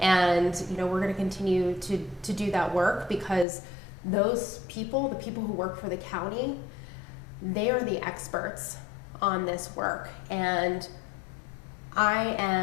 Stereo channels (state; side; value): drops out; right; at 3.5 s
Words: And we're going to continue to do that work, because those people, the people who work for the county, they are the experts on this work. And I